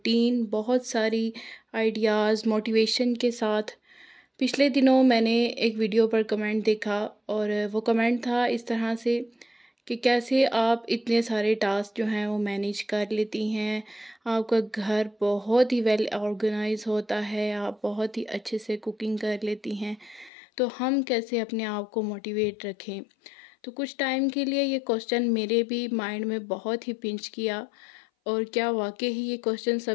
बहुत सारी आइडियाज़, मोटिवेशन के साथ। पिछले दिनों मैंने एक वीडियो पर कमेंट देखा और वो कमेंट था इस तरह से कि कैसे आप इतने सारे टास्क जो हैं वो मैनेज कर लेती हैं। आपका घर बहुत ही वेल ऑर्गेनाइज होता है, आप बहुत ही अच्छे से कुकिंग कर लेती हैं, तो हम कैसे अपने आप को मोटिवेट रखें। तो कुछ टाइम के लिए ये क्वेश्चन मेरे भी माइंड में बहुत ही पिंच किया। और क्या वाकई ही ये क्वेश्चन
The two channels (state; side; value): drops out; right; at 20.3 s